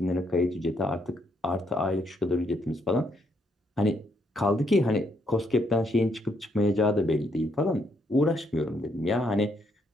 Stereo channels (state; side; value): normal; both; correlation 0.74